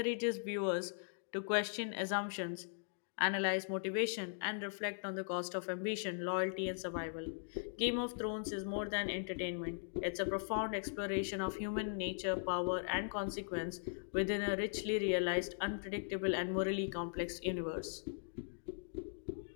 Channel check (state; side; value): silent; right; digital silence